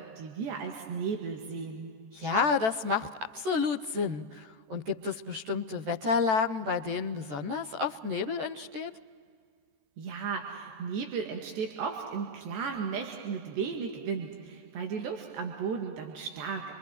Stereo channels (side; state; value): left; late; 14 ms